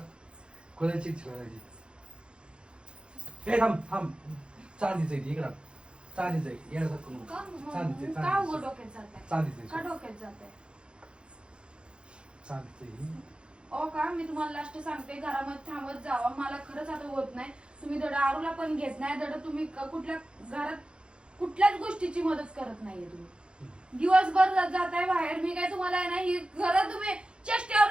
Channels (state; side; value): late; left; 0.054 ms